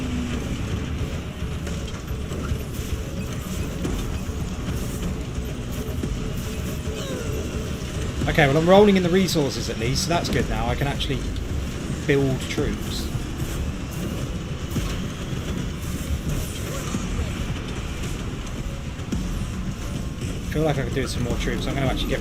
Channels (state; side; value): identical; both; correlation 1.00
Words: Okay, well I'm rolling in the resources at least, so that's good now. I can actually build troops. I feel like I could do some more troops. I'm going to actually